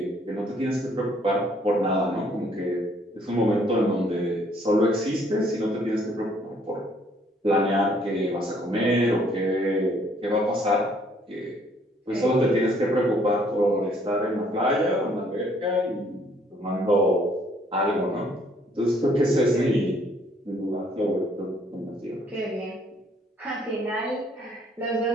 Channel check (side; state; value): both; normal; correlation 0.64